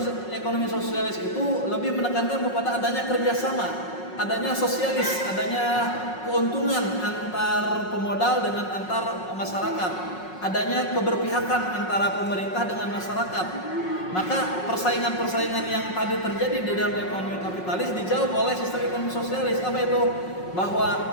ekonomi sosialis itu lebih menekankan kepada adanya kerjasama, adanya sosialis, adanya keuntungan antar pemodal dengan antar masyarakat, adanya keberpihakan antara pemerintah dengan masyarakat. Maka persaingan-persaingan yang tadi terjadi di dalam ekonomi kapitalis dijawab oleh sistem ekonomi sosialis. Apa itu? Bahwa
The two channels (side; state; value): right; late; 5.5 ms